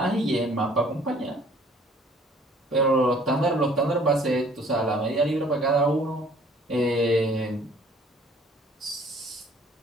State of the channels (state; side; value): normal; both; correlation 0.55